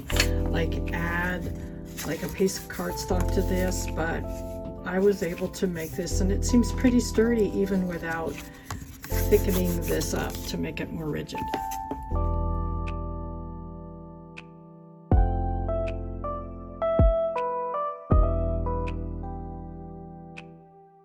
add like a piece of cardstock to this, but I was able to make this, and it seems pretty sturdy even without thickening this up to make it more rigid.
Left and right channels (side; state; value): both; identical; correlation 1.00